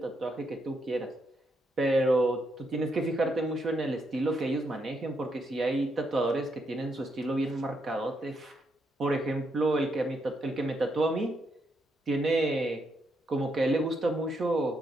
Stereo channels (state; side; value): normal; both; correlation 0.79